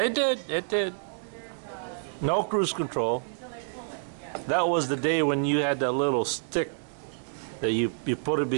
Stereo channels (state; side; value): silent; left; digital silence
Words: did. No cruise control. That was the day when you had that little stick that you put it